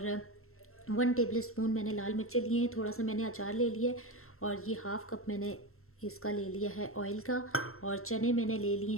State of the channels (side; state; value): right; late; 0.62 ms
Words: 1 टेबल स्पून मैंने लाल मिर्चें लिए हैं, थोड़ा सा मैंने अचार ले लिया है और ये हाफ़ कप मैंने इसका ले लिया है ऑयल का। और चने मैंने ले लिए